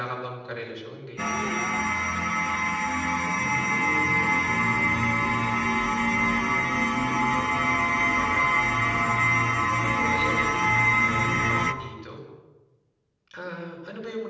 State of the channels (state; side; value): identical; both; correlation 1.00